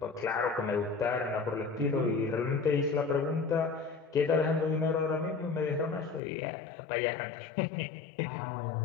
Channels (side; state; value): right; drops out; at 6.2 s